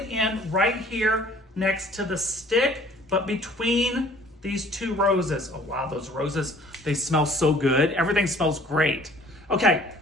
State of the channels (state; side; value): normal; both; correlation 0.54